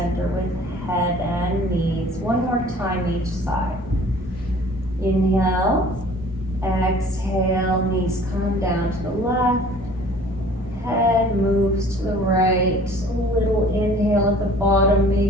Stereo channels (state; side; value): normal; both; correlation 0.50